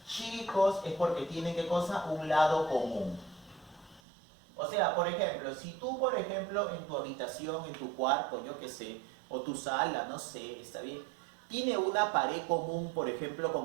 chicos, es porque tienen, ¿qué cosa? Un lado común. O sea, por ejemplo, si tú, por ejemplo, en tu habitación, en tu cuarto, yo qué sé, o tu sala, no sé, está bien, tiene una pared común, por ejemplo,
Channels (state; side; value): drops out; left; at 4.0 s